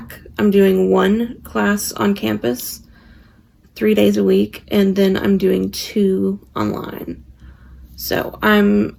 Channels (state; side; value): identical; both; correlation 1.00